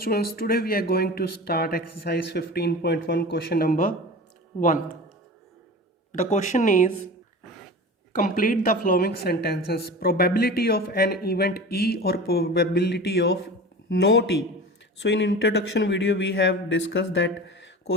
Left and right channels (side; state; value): both; normal; correlation 0.34